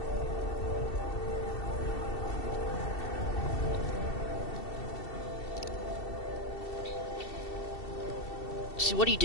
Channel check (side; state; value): right; late; 2.7 ms